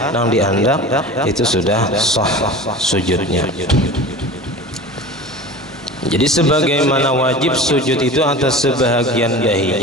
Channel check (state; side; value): normal; both; correlation 0.35